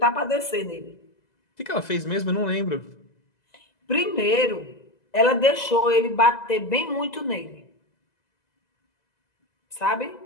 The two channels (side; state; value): right; late; 2.0 ms